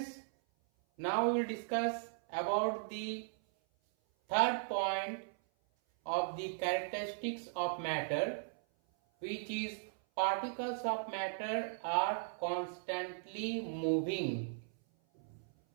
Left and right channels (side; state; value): left; silent; 53 dB below the other